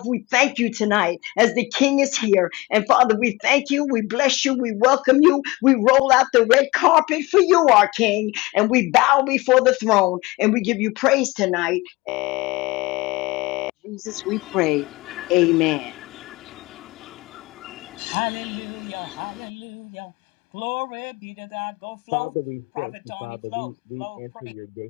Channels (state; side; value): quieter; right; 21.9 dB